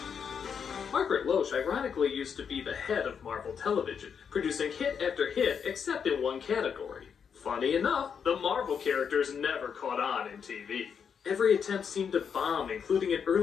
Margaret Loesch ironically used to be the head of Marvel Television, producing hit after hit except in one category. Funny enough, the Marvel characters never caught on in TV. Every attempt seemed to bomb, including an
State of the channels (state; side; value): quieter; right; 6.9 dB